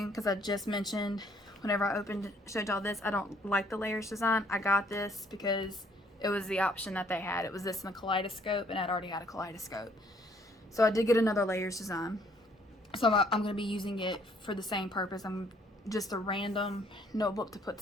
because I just mentioned whenever I showed y'all this, I don't like the layers design. I got this because it was the option that they had. It was this in a kaleidoscope, and I'd already had a kaleidoscope. So I did get another layers design. So I'm going to be using it for the same purpose. I'm just a random notebook to put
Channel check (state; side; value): normal; both; correlation 0.64